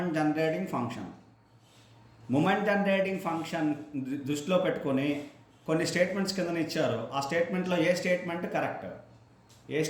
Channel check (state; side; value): identical; both; correlation 1.00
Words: generating function? Moment generating function దృష్టిలో పెట్టుకొని కొన్ని స్టేట్మెంట్స్ కింద ఇచ్చారు. ఆ స్టేట్మెంట్లో ఏ statement